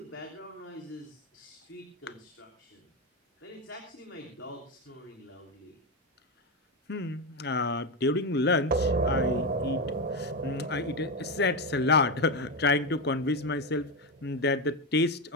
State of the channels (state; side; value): normal; both; correlation 0.12